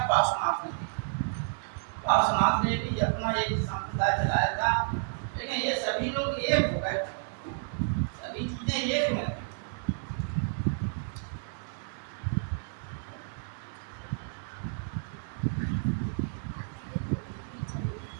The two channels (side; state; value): left; silent; digital silence